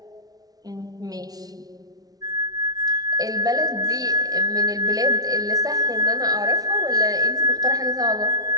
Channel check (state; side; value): late; left; 0.18 ms